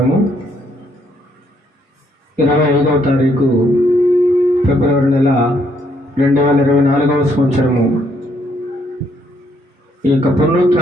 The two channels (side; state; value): both; normal; correlation 0.71